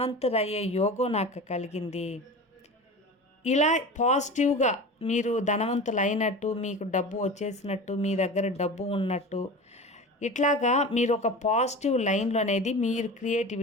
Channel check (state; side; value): normal; both; correlation 0.32